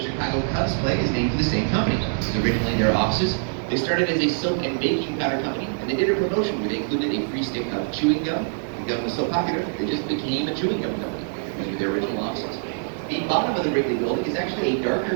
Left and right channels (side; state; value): left; silent; digital silence